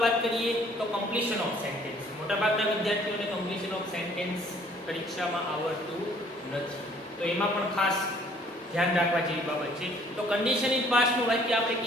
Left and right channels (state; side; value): normal; both; correlation 0.58